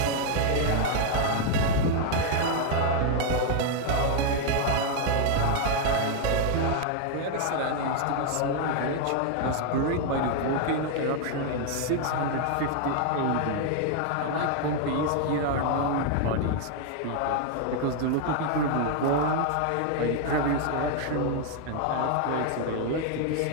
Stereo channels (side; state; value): both; different; correlation 0.00